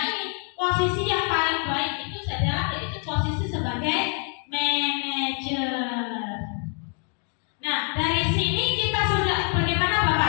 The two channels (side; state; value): right; quieter; 39.3 dB